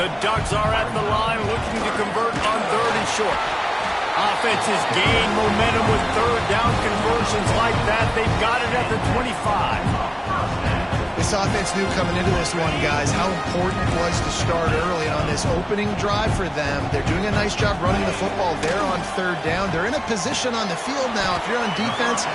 Ducks are at the line looking to convert on third and short. Offenses gain momentum with third down conversions like that. They've got it at the 25. This offense knew coming into this one, guys, how important it was to start early. And on this opening drive for them, they're doing a nice job running the football there on third down. They're in a position on the field now. If you're on defense,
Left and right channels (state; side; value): identical; both; correlation 1.00